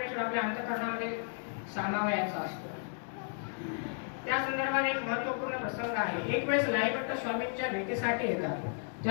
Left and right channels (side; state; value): right; silent; 55 dB below the other